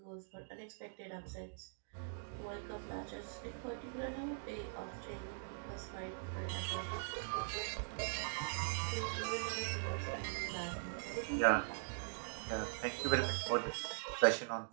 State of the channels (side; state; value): left; silent; digital silence